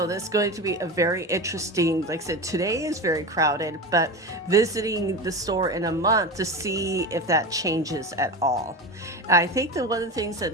this is going to be a very interesting, like I said, today is very crowded, but visiting the store in a month to see if that changes at all. And I think that one of the things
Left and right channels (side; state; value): both; normal; correlation 0.24